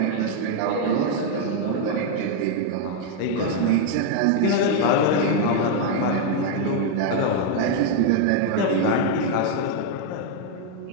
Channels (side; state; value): both; different; correlation 0.01